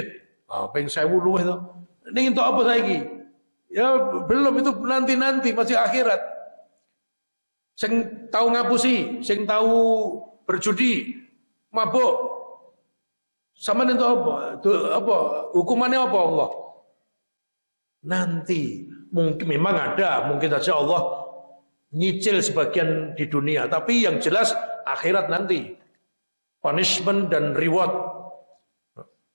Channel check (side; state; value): both; inverted; correlation -1.00